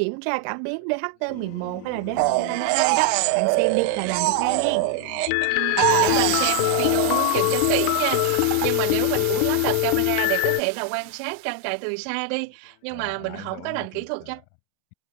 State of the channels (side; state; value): both; different; correlation 0.00